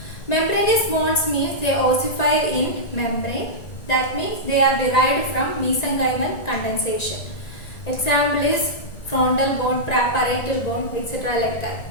Membranous bones means they ossify in membrane. That means they are derived from mesenchymal condensation. Example is frontal bone, parietal bone, etc. like that.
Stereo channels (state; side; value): late; right; 1.9 ms